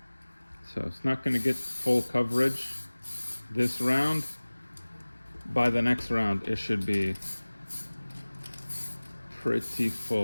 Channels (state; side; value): inverted; both; correlation -1.00